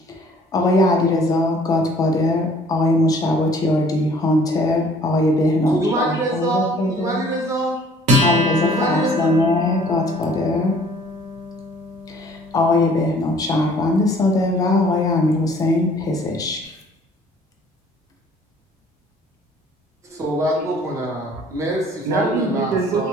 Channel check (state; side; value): normal; both; correlation 0.55